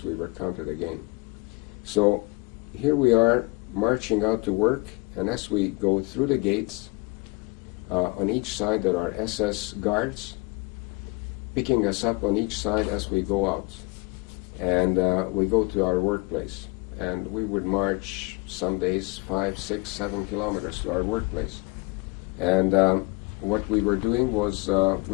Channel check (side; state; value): right; quieter; 25.7 dB